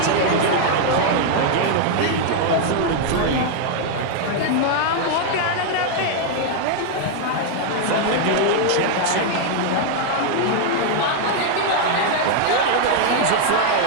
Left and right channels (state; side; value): different; both; correlation 0.00